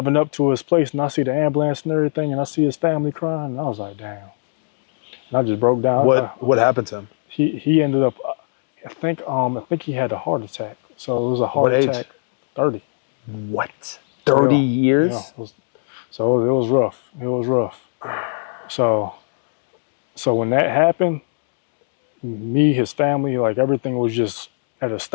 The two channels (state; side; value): silent; right; digital silence